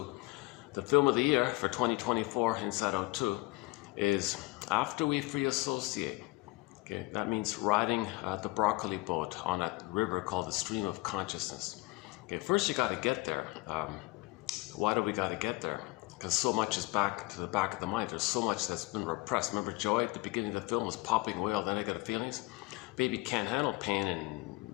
the film of the year for 2024, Inside Out 2, is after we free associate. Okay, that means riding the broccoli boat on a river called the stream of consciousness. Okay, first you got to get there. Why do we got to get there? Because so much is back to the back of the mind. There's so much that's been repressed. Remember Joy at the beginning of the film was popping away all the negative feelings? Baby can't handle pain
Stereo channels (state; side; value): quieter; right; 23.0 dB